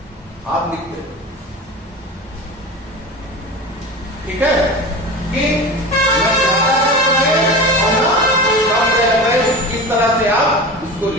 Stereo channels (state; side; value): normal; both; correlation 0.30